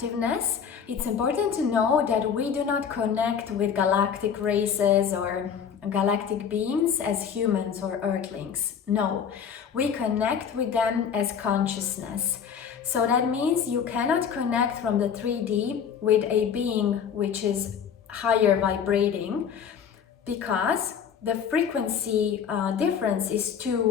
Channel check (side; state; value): right; quieter; 7.5 dB